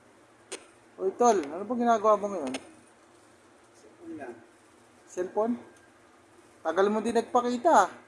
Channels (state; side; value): identical; both; correlation 1.00